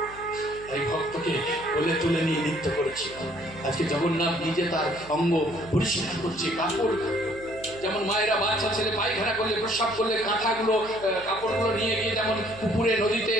তাই ভক্তকে কোলে তুলে নিয়ে নৃত্য করেছিল। আজকে জগন্নাথ নিজে তার অঙ্গ পরিষ্কার করছে। কাপড় যেমন মায়েরা বাচ্চা ছেলে পায়খানা করলে প্রস্রাব করলে কাঁথাগুলো কাপড়গুলো নিয়ে গিয়ে যেমন পুকুরে নদীতে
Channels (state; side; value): noise; right; hum, 19 dB below the sound